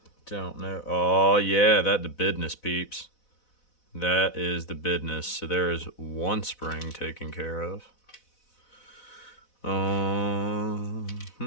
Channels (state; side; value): late; right; 4.0 ms